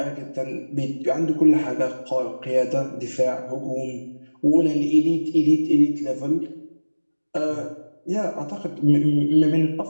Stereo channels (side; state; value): both; inverted; correlation -1.00